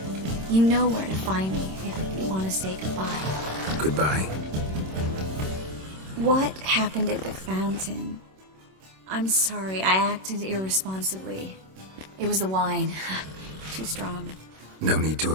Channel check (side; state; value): left; late; 26 ms